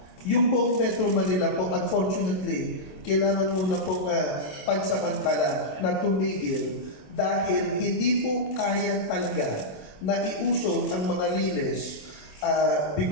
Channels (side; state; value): right; late; 27 ms